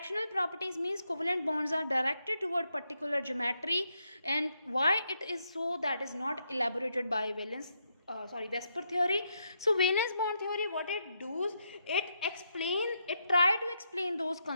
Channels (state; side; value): inverted; both; correlation -0.80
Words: properties means covalent bonds are directed toward particular geometry, and why it is so that is not elaborated by Vesper theory. So valence bond theory, what it does, it try to explain those